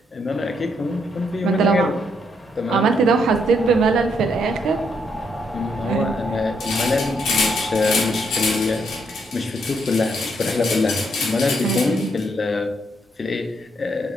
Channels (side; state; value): both; normal; correlation 0.75